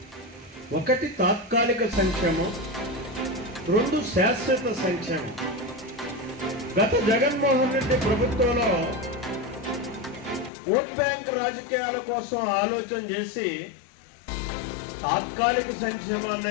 ఒకటి తాత్కాలిక సంక్షేమం, రెండు శాశ్వత సంక్షేమం. గత జగన్మోహన్ రెడ్డి ప్రభుత్వంలో ఓట్ బ్యాంక్ రాజకీయాల కోసం ఆలోచన చేసి తాత్కాలిక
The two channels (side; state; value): right; drops out; at 10.5 s